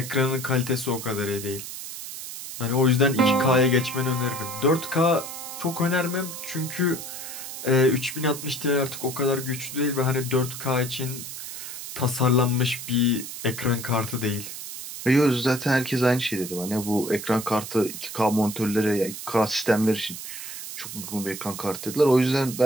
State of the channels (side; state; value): right; noise; hiss, 9 dB below the sound